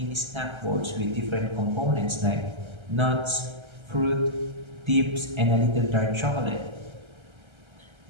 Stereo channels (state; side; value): late; left; 1.3 ms